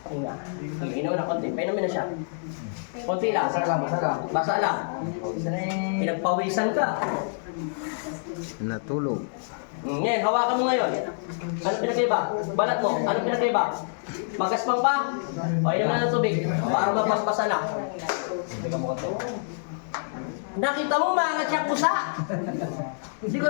Hinga. Hinga mo na konti. Painumin na siya. Konti lang. Basa lang, basa lang. Basa lang. Pinagpawisan ka. Natulog. Ngayon, hawakan mo ngayon. Ano pinagkaiba? Balat mo. Ano pinagkaiba? Magaspang pa? O, inom na ng tubig. Para mapaspasan na. Nakita mo, maangat siya pusa. Hindi ko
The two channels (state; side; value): silent; right; digital silence